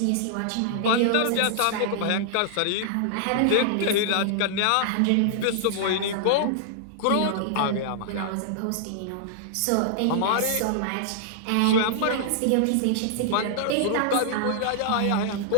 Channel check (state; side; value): different; both; correlation -0.01